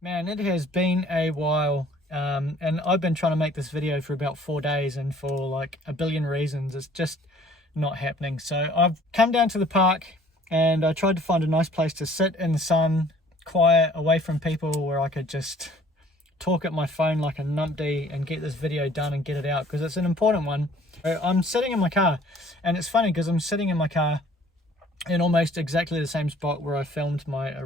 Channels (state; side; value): normal; both; correlation 0.55